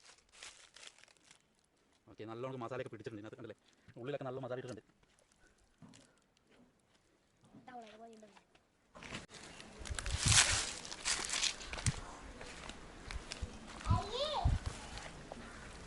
ഓക്കെ, നല്ലോണം മസാലയൊക്കെ പിടിച്ചിട്ടുണ്ട് ഇതിനകത്ത്, കണ്ടില്ലേ? ഉള്ളിലൊക്കെ നല്ല മസാല ഇട്ടിട്ടുണ്ട്.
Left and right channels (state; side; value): identical; both; correlation 1.00